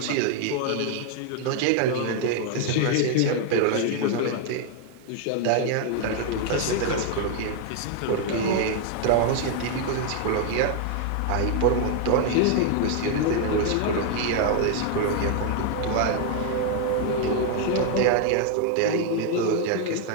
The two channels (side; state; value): both; different; correlation 0.00